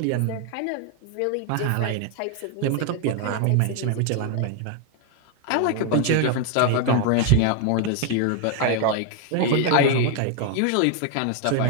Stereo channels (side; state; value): both; different; correlation 0.01